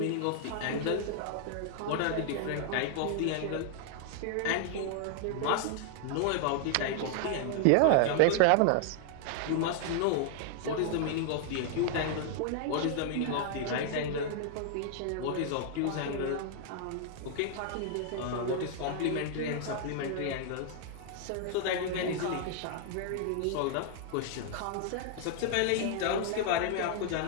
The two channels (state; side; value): different; both; correlation 0.00